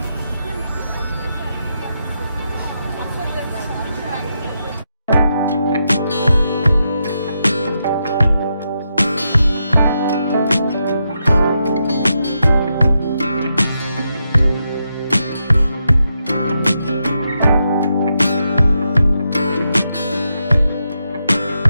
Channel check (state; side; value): inverted; both; correlation -0.84